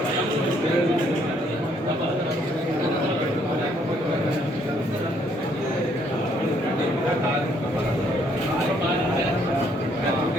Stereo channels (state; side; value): normal; both; correlation 0.68